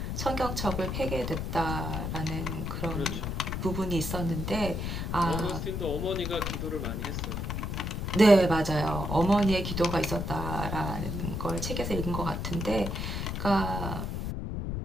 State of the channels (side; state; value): left; noise; rumble, 3 dB below the sound